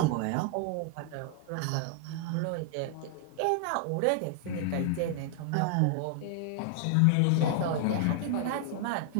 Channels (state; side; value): different; both; correlation 0.00